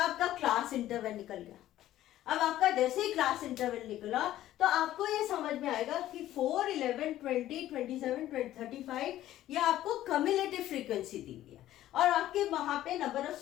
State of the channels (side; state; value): right; quieter; 13.6 dB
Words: क्लास इंटरवल निकल गया. अब आपका जैसे ही क्लास इंटरवल निकला तो आपको ये समझ में आएगा कि 4, 11, 20, 27, 35 ये आपको कम्युलेटिव फ्रीक्वेंसी दी हुई है और आपके वहां पे नंबर ऑफ